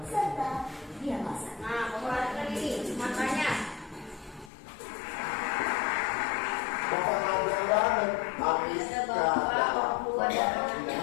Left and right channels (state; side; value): drops out; right; at 4.5 s